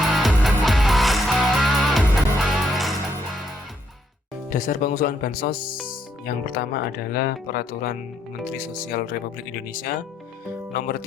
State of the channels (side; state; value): both; normal; correlation 0.74